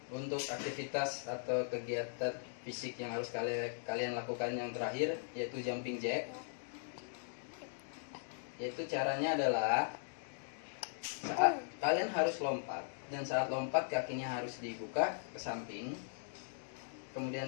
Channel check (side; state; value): right; silent; digital silence